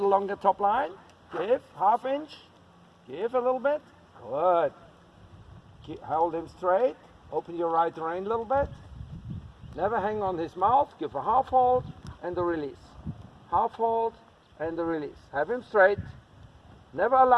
longer top line. Give, 1/2 inch. Give a little bit. Good. Hold him straight. Open your right rein a little bit. Never hang on his mouth. Give a half hold and the release. Half hold and the release. Have him straight. Never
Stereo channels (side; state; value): both; identical; correlation 1.00